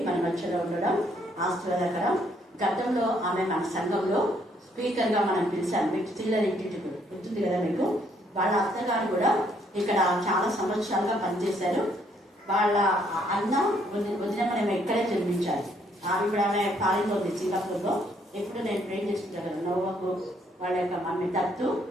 మన మధ్యలో ఉండడం ఆశీర్వాదకరం. గతంలో ఆమె మన సంఘంలో స్పీకర్గా మనం పిలిచాం. మీకు సిల్లర్ ఇంటికి గుర్తుంది కదా మీకు. వాళ్ళ అత్తగారు కూడా ఇక్కడ చాలా సంవత్సరాలుగా పనిచేశారు. వాళ్ళ అన్న వదిన మనం ఇక్కడే జన్మించాలి. ఇప్పుడు ఆమె ఫారిన్లో ఉంది, సింగపూర్లో. ఎప్పుడు నేను ప్రే చేస్తుంటాను. నోవకు వాళ్ళ యొక్క మమ్మీ దత్తు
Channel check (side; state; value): both; normal; correlation 0.69